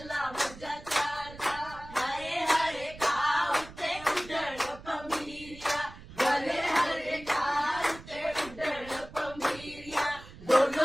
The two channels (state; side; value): noise; right; rumble, 17 dB below the sound